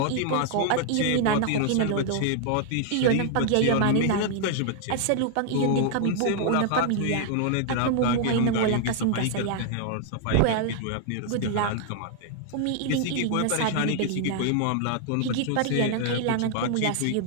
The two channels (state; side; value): different; both; correlation -0.01